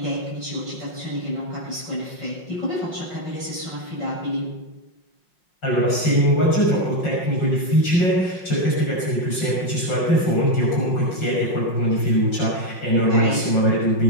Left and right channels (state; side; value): late; right; 5.6 ms